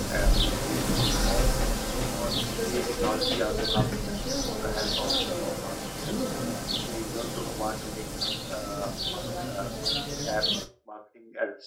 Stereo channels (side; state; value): both; identical; correlation 1.00